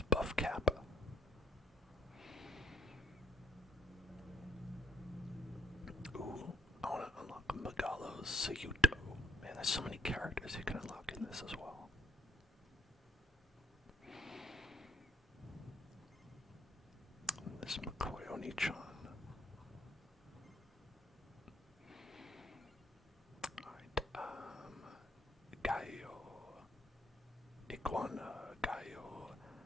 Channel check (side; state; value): both; normal; correlation 0.68